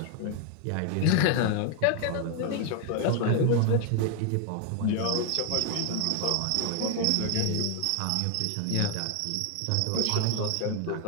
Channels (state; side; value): different; both; correlation 0.01